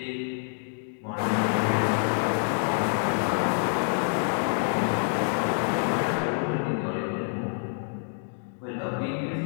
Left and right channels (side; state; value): right; silent; 60 dB below the other